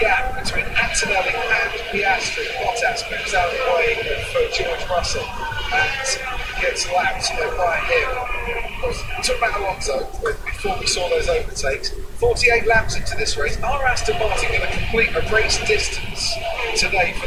between Antonelli and Piastri. Bottas moves out of the way for George Russell and gets lapped by him. We talked about Alonso before we saw those overtakes. 48 laps into this race. Are Aston Martin going to complete a race distance today for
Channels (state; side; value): identical; both; correlation 1.00